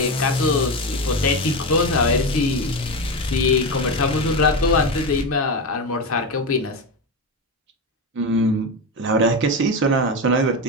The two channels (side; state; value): both; normal; correlation 0.16